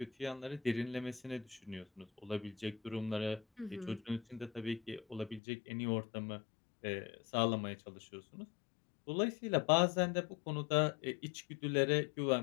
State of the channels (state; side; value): drops out; right; at 5.4 s